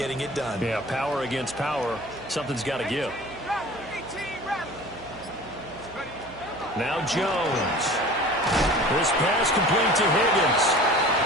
it done. Yeah, power against power. Something's got to give. Now Jones. This pass complete to Higgins.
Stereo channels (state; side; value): noise; right; hum, 20 dB below the sound